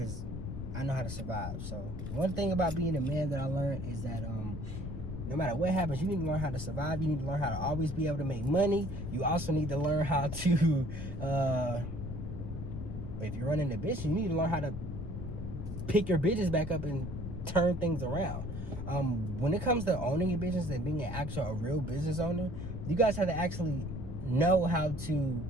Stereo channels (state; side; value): noise; left; rumble, 6 dB below the sound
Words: I know how to survive. So one thing about being a man that I learned is that no matter what happens, you need to learn how to survive. You need to learn how to always be able to make money. You also need to learn how to, if you're running a business, you need to learn how to pick your business back up and turn things around. When it comes to owning a business and being a real business owner, you guys have to actually know how to